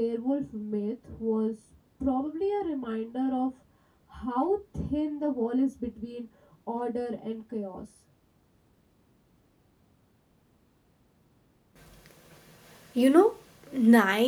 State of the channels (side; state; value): both; identical; correlation 1.00